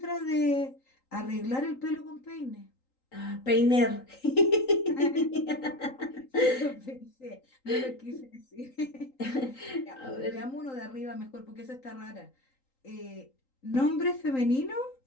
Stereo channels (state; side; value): late; right; 3.8 ms